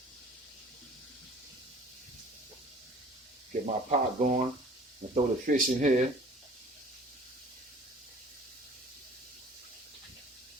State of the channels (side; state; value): both; normal; correlation 0.49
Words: get my pot going and throw the fish in here.